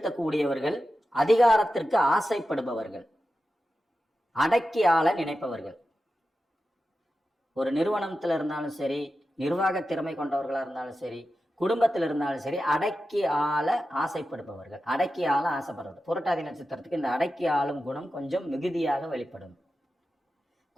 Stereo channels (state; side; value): normal; both; correlation 0.92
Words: அதிகாரத்திற்கு ஆசைப்படுபவர்கள், அடக்கி ஆள நினைப்பவர்கள். ஒரு நிறுவனத்துல இருந்தாலும் சரி, நிர்வாக திறமை கொண்டவர்களா இருந்தாலும் சரி, குடும்பத்தில் இருந்தாலும் சரி, அடக்கி ஆள ஆசைப்படுபவர்கள், அடக்கி ஆள ஆசைப்படுறது. புரட்டாதி நட்சத்திரத்துக்கு இந்த அடக்கி ஆளும் குணம் கொஞ்சம் மிகுதியாக வெளிப்படும்.